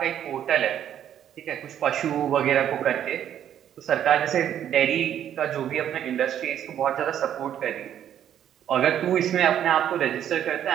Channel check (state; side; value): quieter; left; 10.2 dB